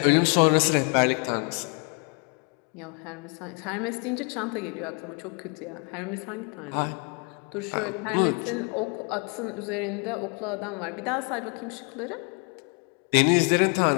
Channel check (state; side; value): quieter; right; 35.8 dB